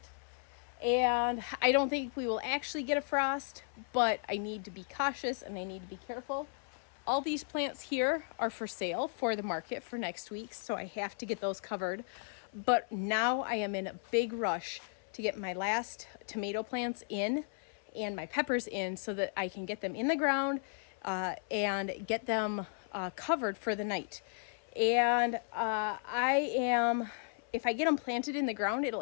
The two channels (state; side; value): silent; right; 54 dB below the other